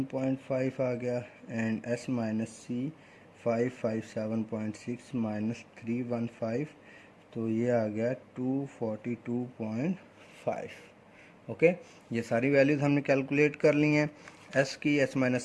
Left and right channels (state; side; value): identical; both; correlation 1.00